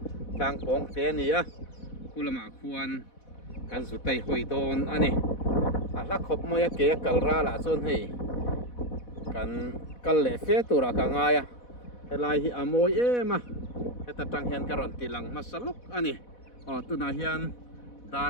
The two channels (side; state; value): right; late; 4.1 ms